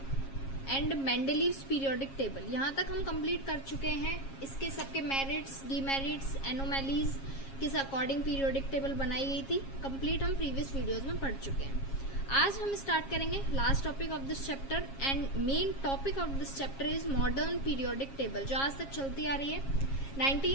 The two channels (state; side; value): late; right; 7.4 ms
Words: and Mendeleev's periodic table, यहाँ तक हम कंप्लीट कर चुके हैं। इसके सबके मेरिट्स, डीमेरिट्स, एनोमैलीज किस अकॉर्डिंग पीरियोडिक टेबल बनाई गई थी, कंप्लीट हम प्रीवियस वीडियोज में पढ़ चुके हैं। आज हम स्टार्ट करेंगे last topic of this chapter and main topic of this chapter is modern periodic table, जो आज तक चलती आ रही है।